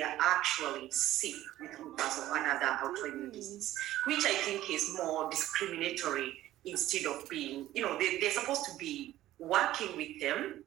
are actually sick with lupus or another autoimmune disease, which I think is more discriminatory instead of being, they're supposed to be working with them,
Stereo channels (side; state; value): left; quieter; 14.4 dB